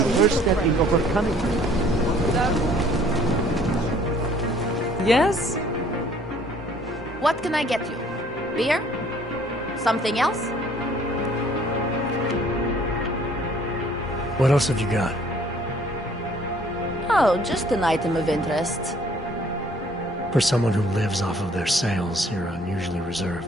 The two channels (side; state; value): both; normal; correlation 0.58